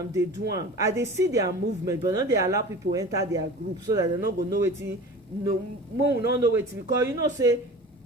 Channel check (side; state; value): both; normal; correlation 0.38